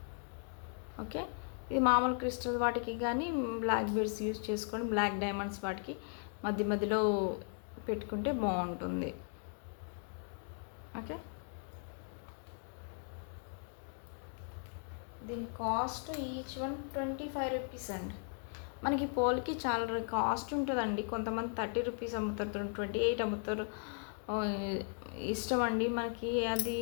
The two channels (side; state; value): right; silent; 53 dB below the other